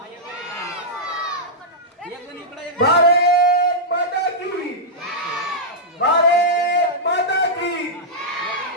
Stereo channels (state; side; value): normal; both; correlation -0.09